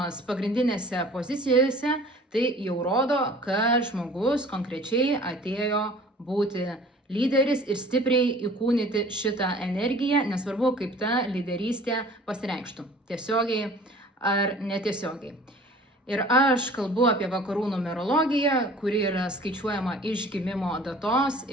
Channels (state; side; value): normal; both; correlation 0.48